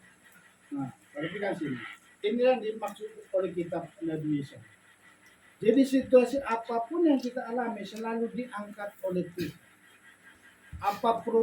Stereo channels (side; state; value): both; identical; correlation 1.00